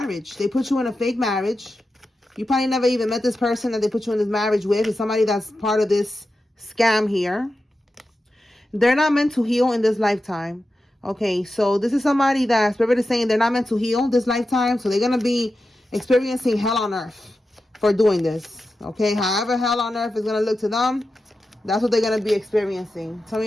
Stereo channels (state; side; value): normal; both; correlation 0.91